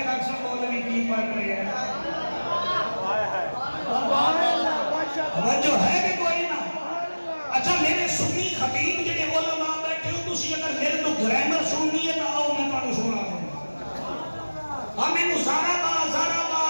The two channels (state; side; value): inverted; both; correlation -1.00